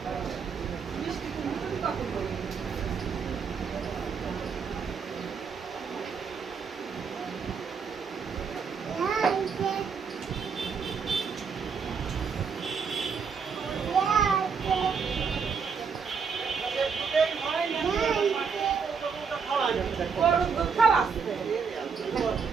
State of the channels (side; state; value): left; quieter; 5.9 dB